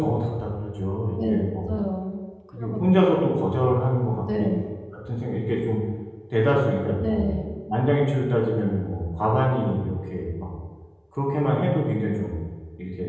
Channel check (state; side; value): identical; both; correlation 1.00